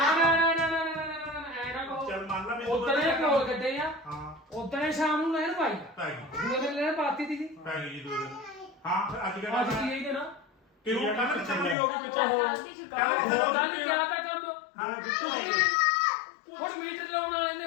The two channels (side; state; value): right; drops out; at 11.8 s